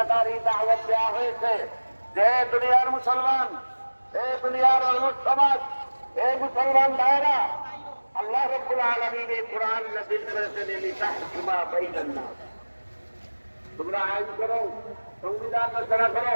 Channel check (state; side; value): inverted; both; correlation -1.00